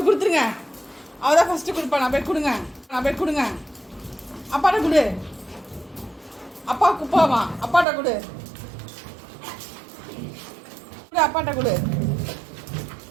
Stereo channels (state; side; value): drops out; left; at 7.9 s